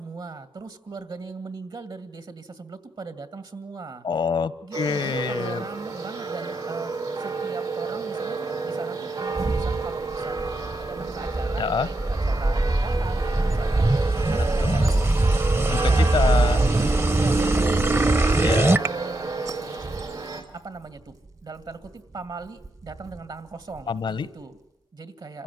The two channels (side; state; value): both; normal; correlation 0.83